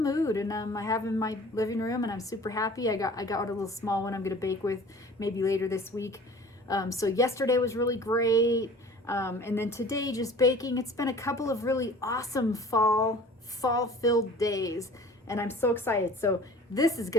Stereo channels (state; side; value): normal; both; correlation 0.46